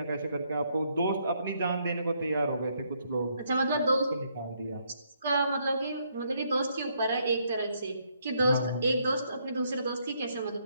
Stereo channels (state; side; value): inverted; both; correlation -0.73